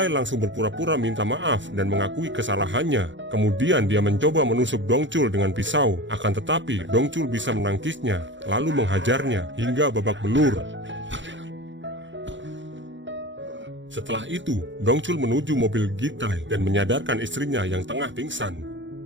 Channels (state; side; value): late; left; 0.54 ms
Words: langsung berpura-pura minta maaf dan mengakui kesalahannya. Kemudian dia mencoba menusuk Dongchul dengan pisau, akan tetapi Dongchul bisa menangkisnya, lalu menghajarnya hingga babak belur. Setelah itu, Dongchul menuju mobil Gitai dan menyadarkan istrinya yang tengah pingsan.